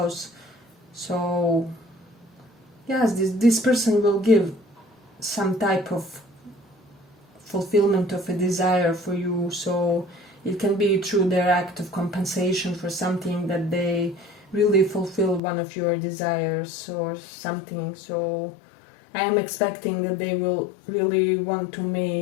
so yes, this person will give some type of fulfillment of a desire for you. So it can be through their act of compensation for something that they really fulfill one of your desires or something. So I am expecting that they will really want to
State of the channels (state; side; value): drops out; right; at 15.4 s